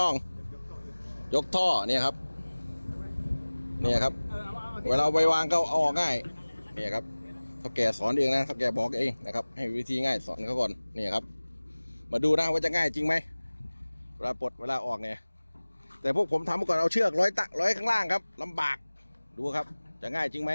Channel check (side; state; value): both; inverted; correlation -1.00